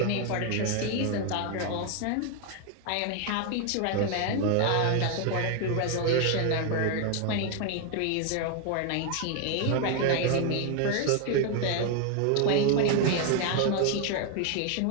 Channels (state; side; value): different; both; correlation 0.01